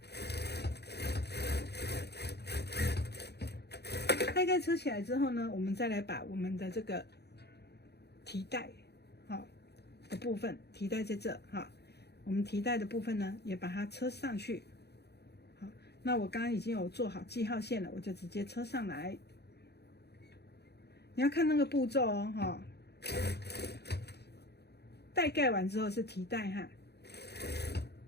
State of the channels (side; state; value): right; late; 0.48 ms